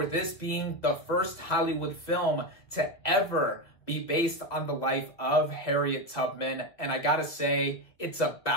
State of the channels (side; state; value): right; late; 1.7 ms